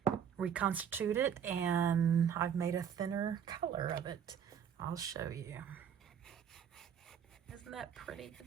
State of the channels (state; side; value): quieter; left; 8.2 dB